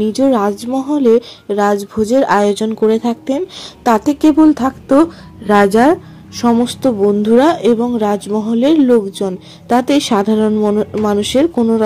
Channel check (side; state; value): both; identical; correlation 1.00